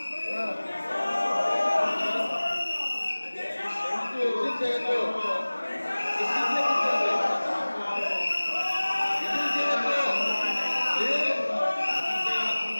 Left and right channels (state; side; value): inverted; both; correlation -1.00